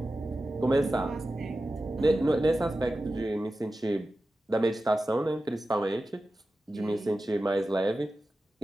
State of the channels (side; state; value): both; normal; correlation 0.93